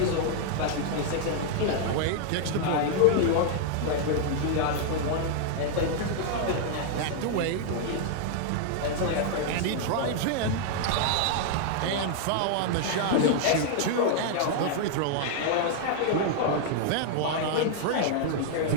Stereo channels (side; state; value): both; different; correlation 0.00